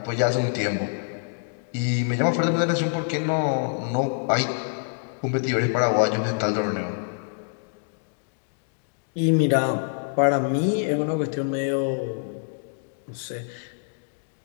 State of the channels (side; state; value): right; silent; digital silence